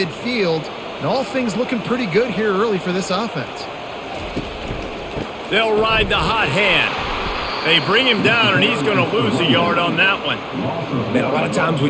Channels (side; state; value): both; identical; correlation 1.00